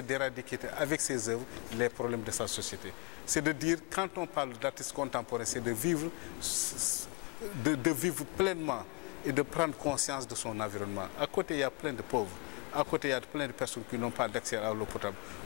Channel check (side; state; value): right; quieter; 28.0 dB